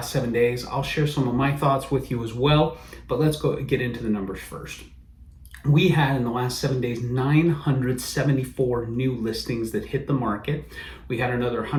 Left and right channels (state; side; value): identical; both; correlation 1.00